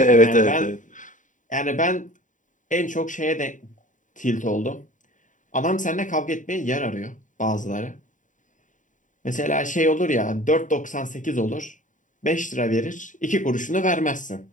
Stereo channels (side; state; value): right; late; 0.37 ms